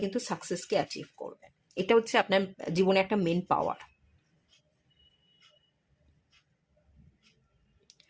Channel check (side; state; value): both; identical; correlation 1.00